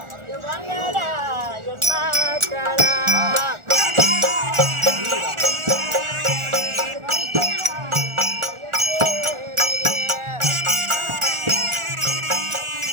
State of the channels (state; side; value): late; left; 1.4 ms